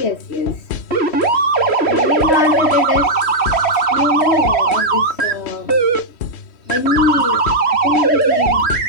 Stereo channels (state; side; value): late; right; 3.1 ms